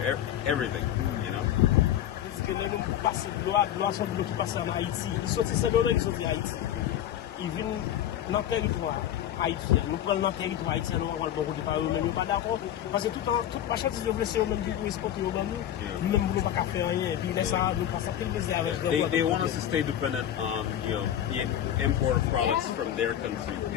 everything, you know. Haïtien. Nous prenons notre territoire haïtien, nous avons le bon côté par eux-mêmes, nous pas d'accord. Parce que toute marchandise de blessés eux-mêmes qui exportent nous, nous-mêmes nous ne pouvons pas faire rien. Et puis là, ça, nous passons quel plaisir avec They want us to stay dependent on, you know, the import of products from their country.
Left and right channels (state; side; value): quieter; right; 11.1 dB